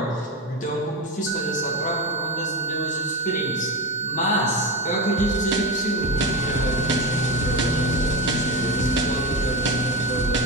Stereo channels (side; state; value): both; normal; correlation 0.18